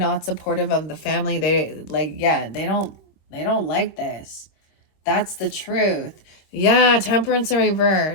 supportive of the family. They like, yeah, they don't like this. That's the truth. Yeah, Temperance in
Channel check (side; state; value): right; late; 25 ms